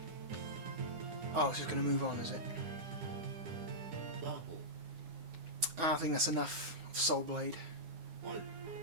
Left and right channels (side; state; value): left; late; 9.9 ms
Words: Oh, it's just gonna move on, is it? I think that's enough of Soul Blade.